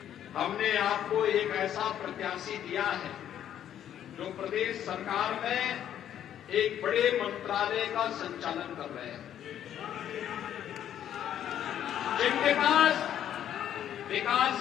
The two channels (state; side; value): quieter; right; 10.4 dB